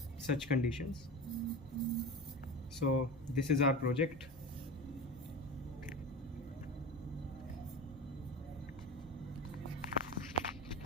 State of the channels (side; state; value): both; normal; correlation 0.27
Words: such conditions. So this is our project.